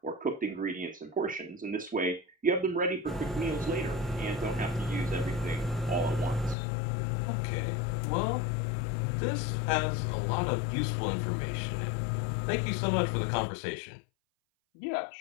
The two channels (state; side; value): drops out; right; at 6.6 s